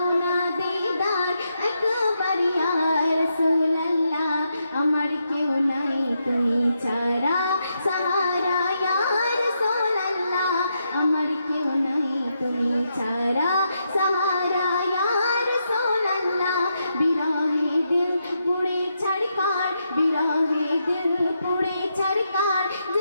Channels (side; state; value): both; inverted; correlation -0.82